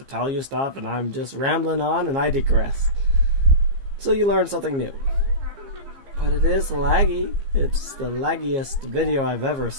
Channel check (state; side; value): late; left; 15 ms